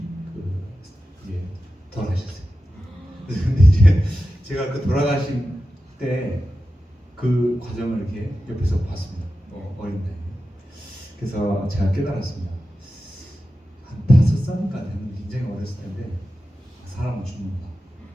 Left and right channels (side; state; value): both; normal; correlation 0.92